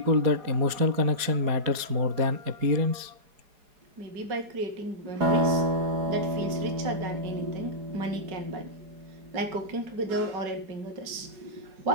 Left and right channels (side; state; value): left; late; 4.8 ms